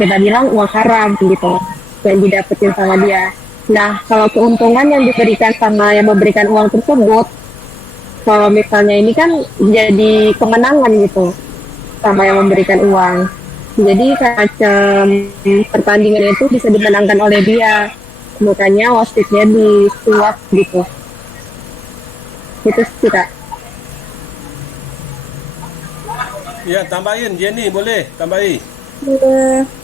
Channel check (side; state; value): both; normal; correlation 0.86